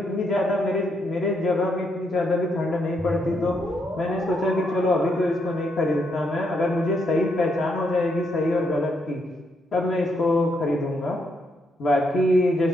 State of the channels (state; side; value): normal; both; correlation 0.77